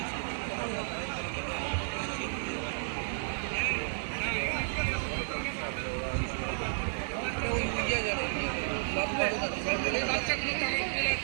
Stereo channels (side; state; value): left; silent; digital silence